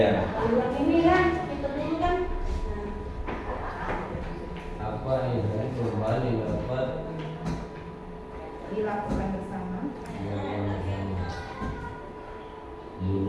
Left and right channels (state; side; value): identical; both; correlation 1.00